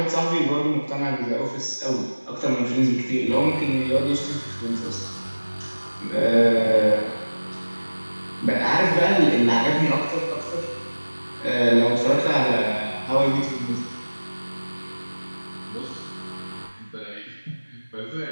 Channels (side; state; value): both; inverted; correlation -1.00